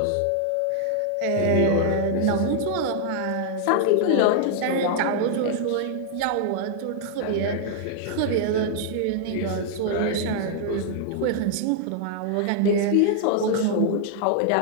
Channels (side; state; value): both; different; correlation -0.01